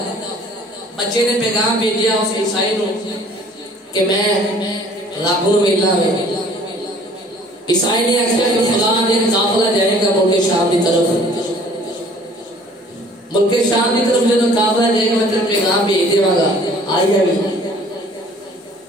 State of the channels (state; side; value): normal; both; correlation 0.54